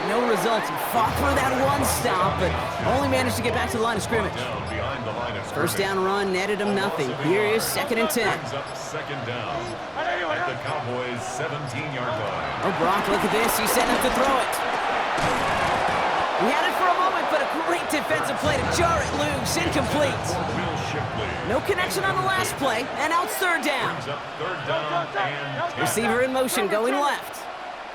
no results. He fought through that one stop, but only managed to get back to the line of scrimmage. 1st down run netted him nothing. Here is 2nd and 10. Brings up 2nd down at the Cowboys' 17-yard line. Oh, Brock, look at this. He's setting up to throw it. He had it for a moment, but a great defensive play to jar it loose. Incomplete. No connection on the last play, and now it's 3rd down. Brings up 3rd down and 10. Receiver in motion, going left.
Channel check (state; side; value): identical; both; correlation 1.00